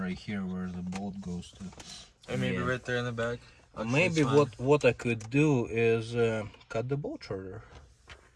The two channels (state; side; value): identical; both; correlation 1.00